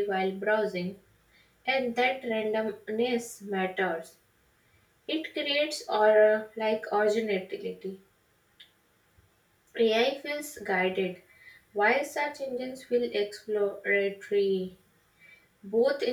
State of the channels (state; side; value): identical; both; correlation 1.00